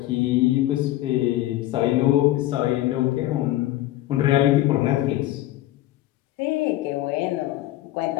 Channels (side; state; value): right; quieter; 15.3 dB